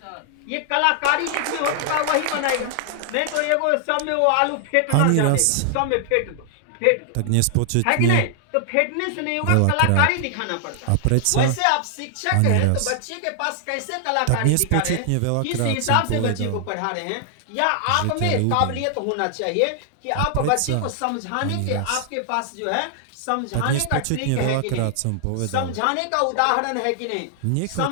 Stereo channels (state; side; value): different; both; correlation 0.00